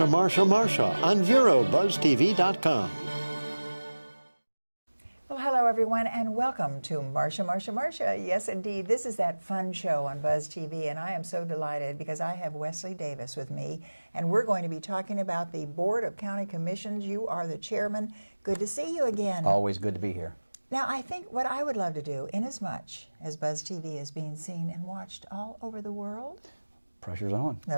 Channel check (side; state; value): both; inverted; correlation -1.00